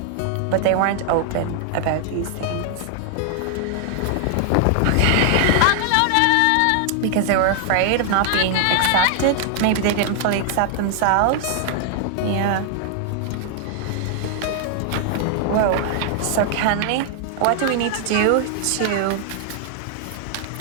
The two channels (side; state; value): both; different; correlation 0.00